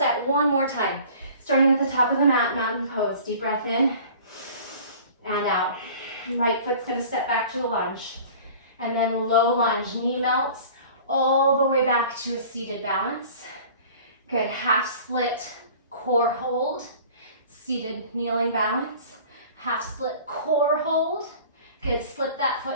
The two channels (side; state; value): both; inverted; correlation -0.45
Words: one more time. Starting at the top of the mat, mountain pose. Deep breath in and out. Right foot's going to step back to a lunge. And then low lunge, knee melts all the way back to a seated balance. Good, half split core hold, seated kneeling balance. Half split core hold. Good, slip that